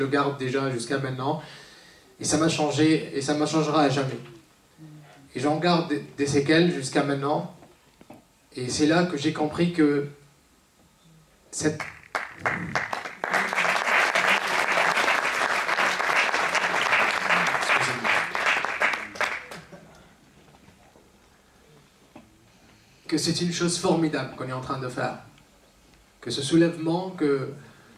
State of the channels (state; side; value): identical; both; correlation 1.00